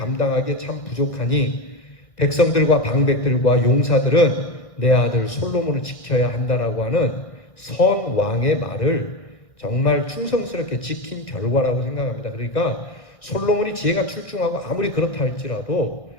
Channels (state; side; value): late; right; 1.6 ms